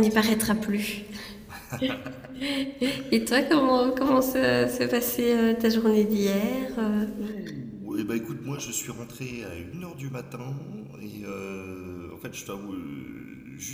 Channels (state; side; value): identical; both; correlation 1.00